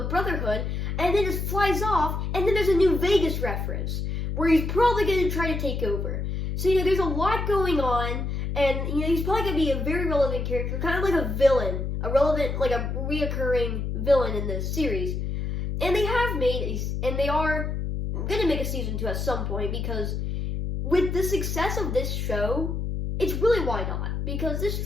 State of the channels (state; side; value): noise; left; hum, 2 dB below the sound